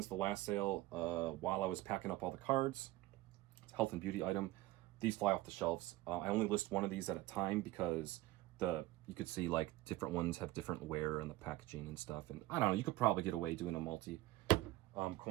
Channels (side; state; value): left; quieter; 17.6 dB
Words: the last sale while I was packing up all the cards. It's a health and beauty item. These fly off the shelves. I only list one of these at a time because you could see like different ones have different wear and the packaging and stuff. And I don't know, you could probably get away doing a multi